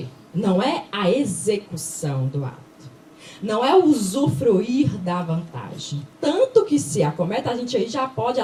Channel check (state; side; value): identical; both; correlation 1.00